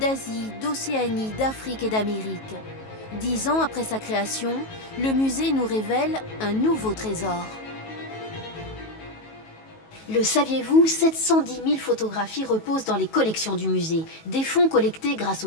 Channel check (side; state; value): right; late; 19 ms